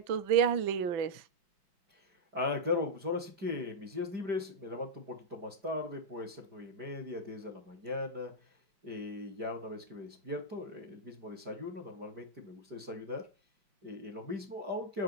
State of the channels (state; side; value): late; left; 5.0 ms